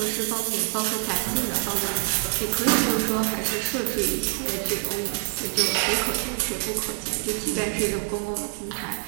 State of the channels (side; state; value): left; silent; 58 dB below the other